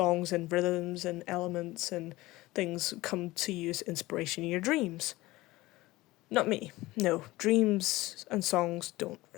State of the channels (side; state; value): right; quieter; 19.0 dB